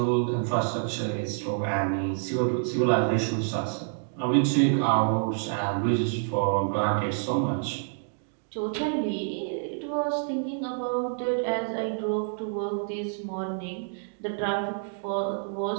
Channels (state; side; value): silent; left; digital silence